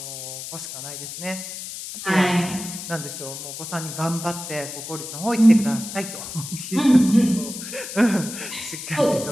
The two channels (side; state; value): left; noise; hiss, 9 dB below the sound